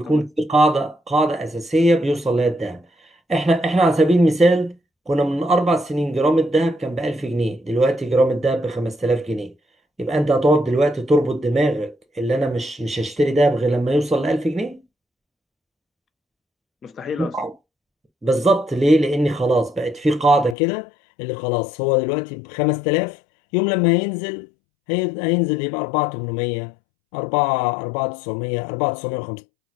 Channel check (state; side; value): drops out; right; at 20.6 s